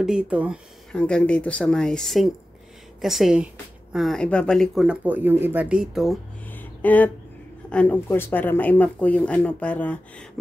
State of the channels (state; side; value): normal; both; correlation 0.94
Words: hanggang dito sa may sink. Kasi ibabalik ko na po yung iba dito. At and of course para ma-map ko yung para